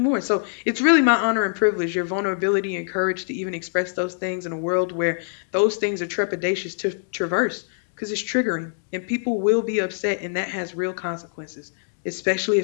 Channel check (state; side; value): silent; right; digital silence